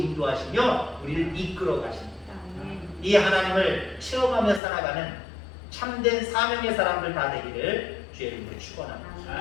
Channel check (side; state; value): right; drops out; at 4.6 s